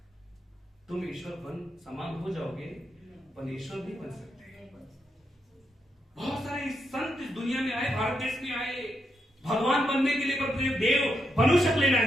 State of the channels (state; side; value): normal; both; correlation 0.82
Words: तुम ईश्वर समान हो जाओगे, पण ईश्वर नहीं बन सकते। बहुत सारे संत इस दुनिया में आए, भारत देश में आए भगवान बनने के लिए, पर तुझे देव बनू शकले